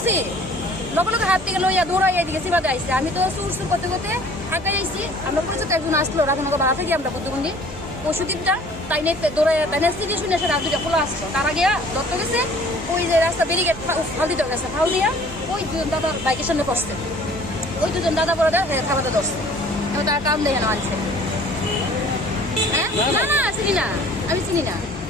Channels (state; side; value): normal; both; correlation 0.51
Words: লগে লগে হাত থেকে লইয়া দৌড়াই এদিকে চিবাতে আইসি। আমি তো সুর সুর করতে করতে আঁকাই আইসি। আমরা পরিচিত একজন আসলো রাধানগর ভাড়া থেকে, আমরা বুদ্ধবন্দি পশুদ্বীপটা তাই নিয়ে দৌড়াই তাই নিয়ে সিটি শুনে এসে রাত দুটা খোলা আসলো। তার আগে দত্ত গেছে ওই যে রাস্তা ব্যারিকেড ফাল দিতে গেছে, ফাল দিয়া ওই দুজন দাদা বাইকের সামনে পড়ছে। ওই দুজন দাদা বড় খাবারটা ধরছে, এবার তার কাম দেখে না আনছে। হ্যাঁ না না চিনি না, আমি চিনি না।